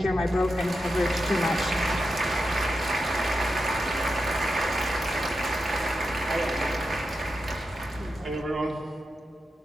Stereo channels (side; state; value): both; normal; correlation 0.88